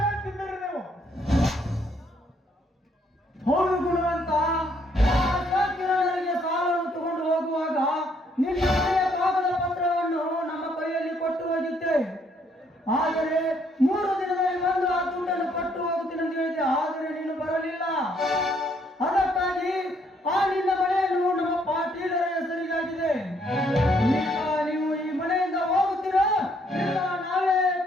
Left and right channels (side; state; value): both; normal; correlation 0.69